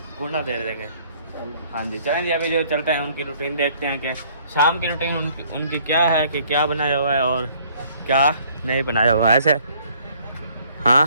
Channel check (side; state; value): both; inverted; correlation -0.60